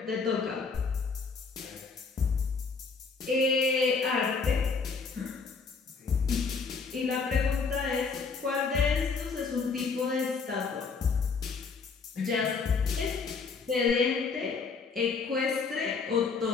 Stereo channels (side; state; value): right; quieter; 4.9 dB